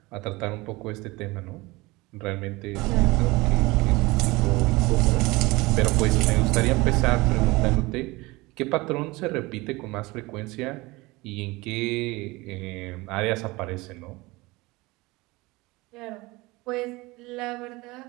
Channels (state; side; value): quieter; left; 22.3 dB